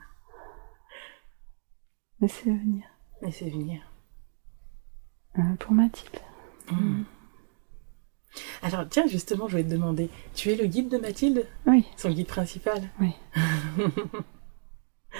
Laissez venir. Laissez venir. Pour Mathilde. Alors tiens, justement, je vais te demander, tu es le guide de Mathilde? Oui. Son guide principal? Oui.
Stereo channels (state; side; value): silent; left; digital silence